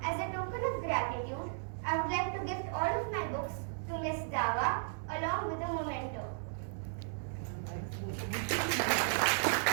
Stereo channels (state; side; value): silent; left; 54 dB below the other